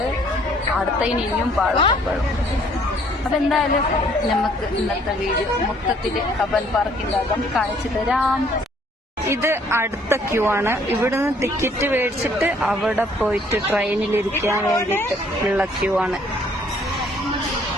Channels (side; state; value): both; normal; correlation 0.61